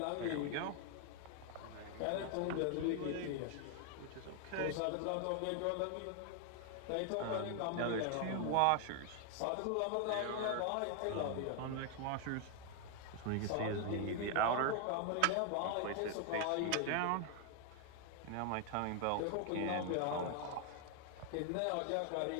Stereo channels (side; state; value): both; different; correlation 0.00